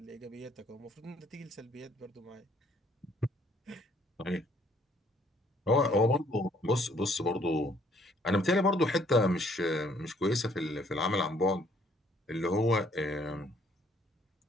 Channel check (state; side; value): normal; both; correlation 0.64